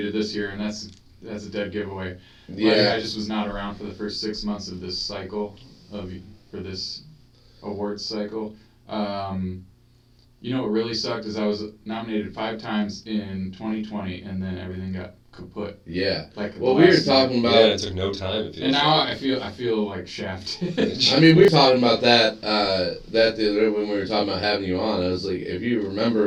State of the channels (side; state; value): both; identical; correlation 1.00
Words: this year, and that's a dead giveaway. Yeah. I just was not around for the first 6 months of this cycle, for this awards cycle. You know what really sucked is I was nominated 5 times in 2020, and then everything got kaput. Yeah. Like well, we were talking about... Yeah, it took no time. And now I feel like shafted. I mean, we were talking about that the other day when we were talking about having you on. I was like, if you